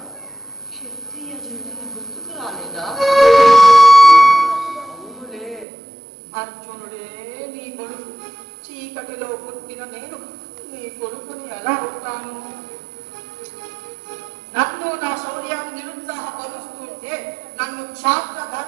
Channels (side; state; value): left; drops out; at 5.7 s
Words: పుట్టిన నేను నీ కొడుకుని ఎలా ఉంటాను? నన్ను నా శౌర్యాన్ని నిరుత్సాహపరుస్తుంటే నన్ను క్షాత్ర